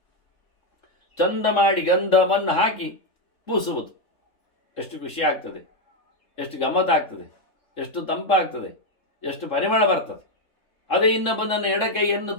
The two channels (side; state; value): right; late; 3.7 ms